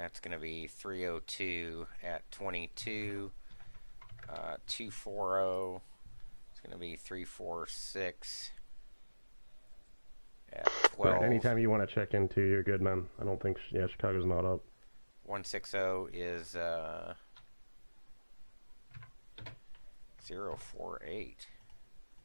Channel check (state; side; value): inverted; both; correlation -1.00